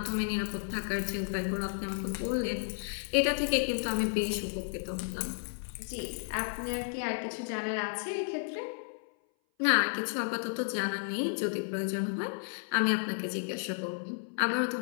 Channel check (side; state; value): right; silent; 56 dB below the other